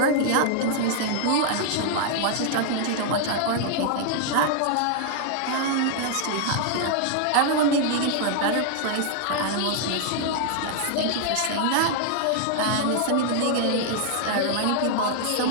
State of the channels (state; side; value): different; both; correlation 0.00